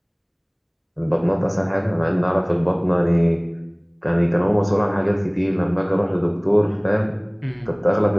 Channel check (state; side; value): identical; both; correlation 1.00